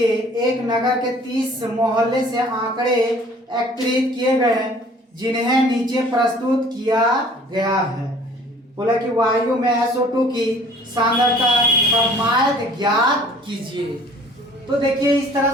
एक नगर के 30 मोहल्ले से आंकड़े एकत्रित किए गए जिन्हें नीचे प्रस्तुत किया गया है। बोला कि वायु में SO2 की सांद्रता का मायद ज्ञात कीजिए। तो देखिए इस तरह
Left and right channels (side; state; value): both; normal; correlation 0.52